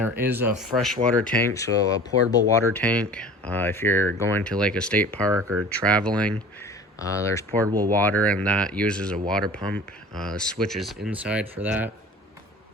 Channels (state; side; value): normal; both; correlation 0.42